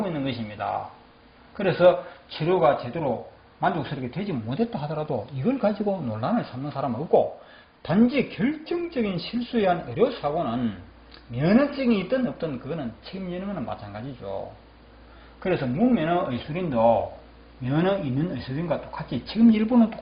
있는 것입니다. 그래서 치료가 제대로 만족스럽게 되지 못했다 하더라도 이걸 가지고 논란을 삼는 사람은 없고, 단지 결정적인 실수에 의한 의료사고는 면허증이 있든 없든 그거는 책임지는 것은 마찬가지죠. 그래서 무면허 의술인도 면허 있는 의술인과 똑같이 책임질 분은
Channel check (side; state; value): both; identical; correlation 1.00